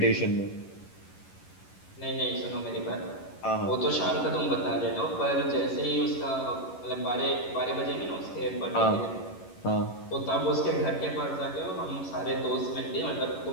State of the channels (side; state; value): right; late; 11 ms